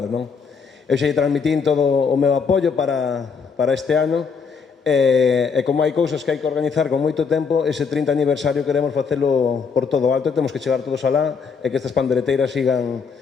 non? Eu xa transmitín todo o meu apoio para este ano, e como hai cousas que hai que organizar con moito tempo, ese 30 aniversario queremos facelo por todo alto e temos que chegar todos alá e que estas pandereteiras sigan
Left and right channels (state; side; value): quieter; right; 5.6 dB